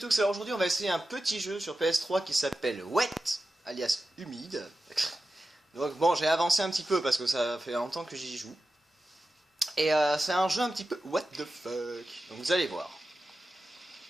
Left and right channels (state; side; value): normal; both; correlation 0.93